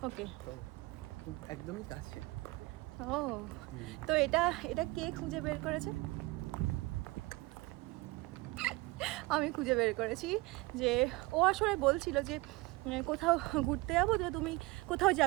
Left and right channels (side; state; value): left; quieter; 22.2 dB